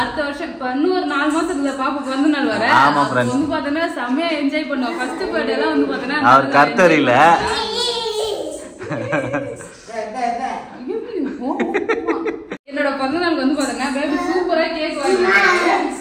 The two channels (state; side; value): identical; both; correlation 1.00